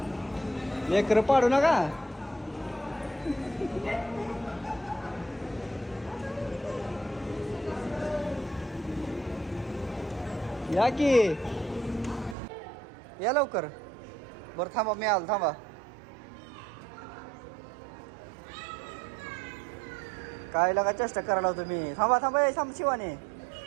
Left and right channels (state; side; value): drops out; left; at 12.4 s